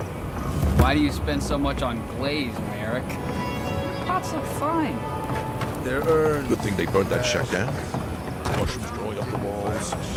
Why do you spend so much on glaze, Merrick? Pots look fine. They're earned. Good thing they burned that shack down. Mushrooms growing up the walls.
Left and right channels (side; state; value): both; identical; correlation 1.00